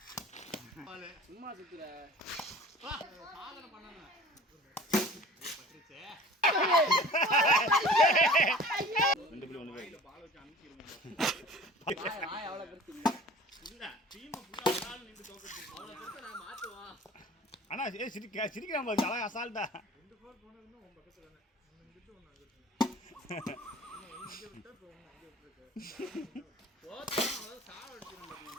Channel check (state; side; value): normal; both; correlation 0.44